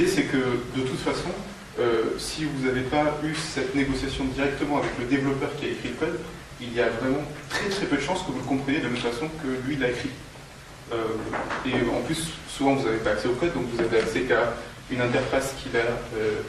c'est que de toute façon, si vous n'avez pas eu cette négociation directement avec le développeur qui a écrit le code, il y a vraiment très très peu de chances que vous le compreniez de la même façon que lui l'a écrit. Et en plus, souvent vous n'avez pas accès au code, donc vous avez accès qu'à une interface qu'il a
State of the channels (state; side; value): identical; both; correlation 1.00